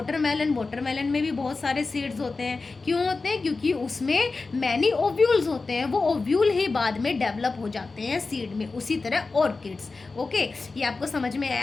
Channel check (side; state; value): right; quieter; 3.9 dB